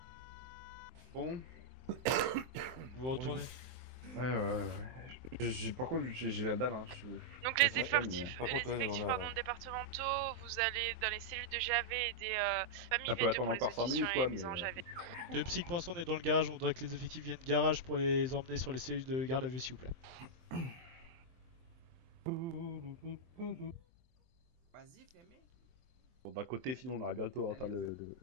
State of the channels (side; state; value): left; late; 23 ms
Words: Bon. Vous retournez. Ouais. Par contre, j'ai la dalle. Hein. Donc les effectifs, départementaux, vous allez dans les cellules de JAV et des familles Ça peut V2 attendre pour les encore 5 auditions minutes, et quoi, les mises en mais- JAV. De Psych pour l'instant on est dans le garage, on voudrait que les effectifs viennent garage pour les emmener sur les cellules de garde à vue s'il vous plaît. Vas-y, fais-moi. Bon, d'un côté, sinon, on aurait bientôt atteint le